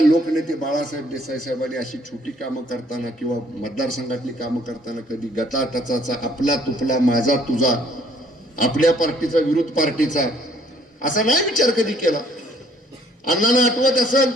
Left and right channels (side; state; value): both; normal; correlation 0.62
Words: लोकनेते बाळासाहेब देसाई साहेबांनी अशी छोटी कामं करताना किंवा मतदारसंघातली कामं करताना कधी गटाटचाचा, आपला तुपला, माझा तुझा, आपल्या पार्टीचा विरोध पार्टीचा असा नाही विचार कधी केला. अण्णांना आठवत असेल,